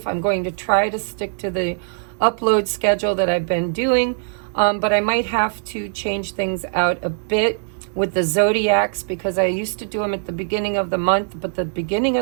I'm going to try to stick to the upload schedule that I've been doing, but I might have to change things out a bit with the zodiacs, because I used to do them at the beginning of the month, but the beginning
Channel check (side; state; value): left; silent; 65 dB below the other